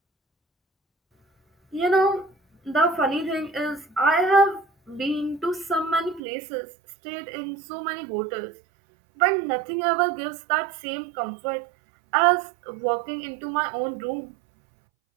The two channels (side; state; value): left; drops out; at 6.2 s